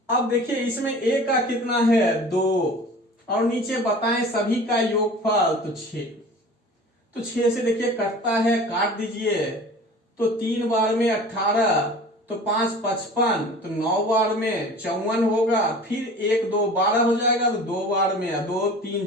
अब देखिए इसमें ए का कितना है, 2, और नीचे बताएं सभी का योगफल, तो 6। तो 6 से देखिए कटता है, काट दीजिए। तो 3 बार में 18, तो 5 55, तो 9 बार में 54 होगा। फिर 1 2 12 हो जाएगा, तो 2 बार में 2 3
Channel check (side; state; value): both; normal; correlation 0.41